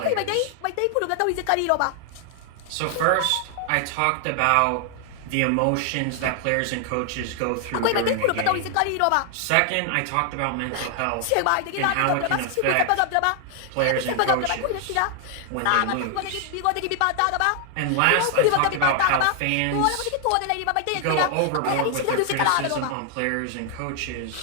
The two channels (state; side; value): different; both; correlation 0.00